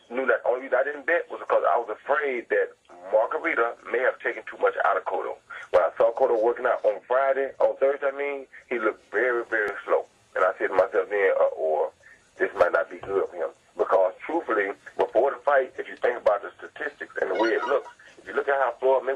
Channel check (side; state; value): both; identical; correlation 1.00